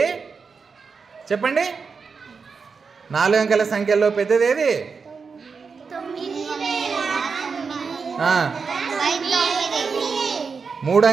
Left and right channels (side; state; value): left; quieter; 5.2 dB